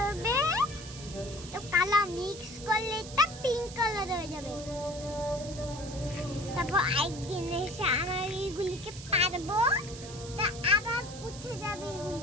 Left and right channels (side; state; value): right; noise; hiss, 14 dB below the sound